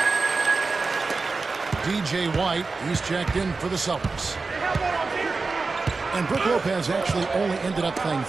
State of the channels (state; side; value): quieter; left; 4.0 dB